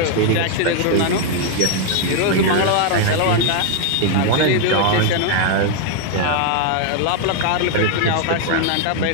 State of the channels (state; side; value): different; both; correlation 0.00